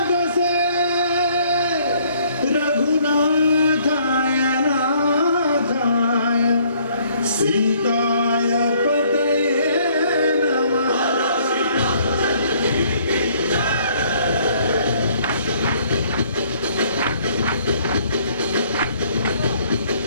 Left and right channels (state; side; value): inverted; both; correlation -0.62